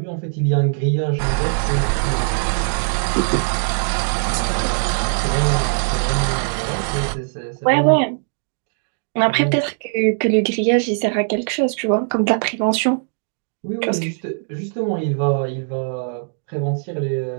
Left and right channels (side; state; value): left; silent; digital silence